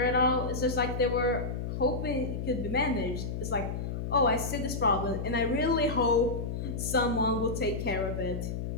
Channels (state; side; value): noise; left; hum, 4 dB below the sound